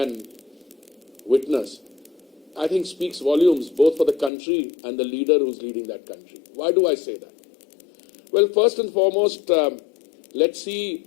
witness, I think speaks volumes both for the country and the leader who's leading that country. Why do I say that? Well, first and foremost, let's see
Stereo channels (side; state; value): right; drops out; at 4.3 s